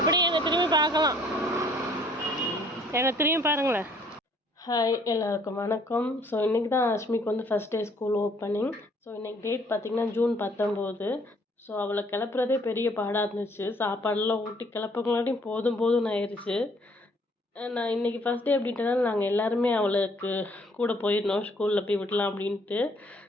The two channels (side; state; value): both; normal; correlation 0.62